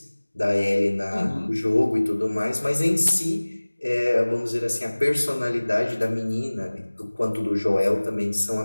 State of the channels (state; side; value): inverted; both; correlation -1.00